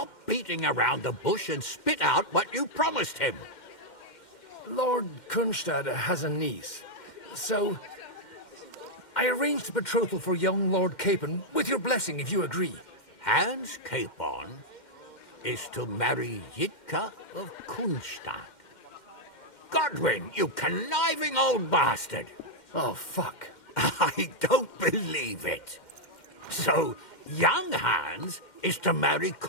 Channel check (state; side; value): late; right; 2.1 ms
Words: beating around the bush and spit out what you promised him. Lord Kunstad has a niece, so... I arranged a betrothal for young Lord Capon, with your blessing if you agree. Hans Capon is to marry Yitka of Kunstadt. Godwin, you conniving old bastard! Oh, fuck. I don't believe it. So, young Hans is to marry